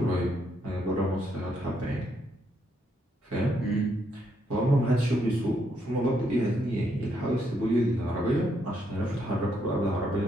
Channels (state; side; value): normal; both; correlation 0.75